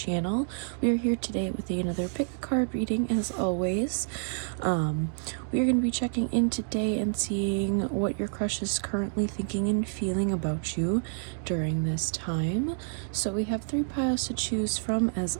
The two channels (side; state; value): left; silent; digital silence